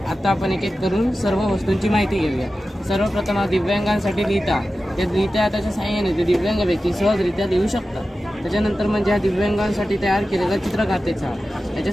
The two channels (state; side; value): normal; both; correlation 0.94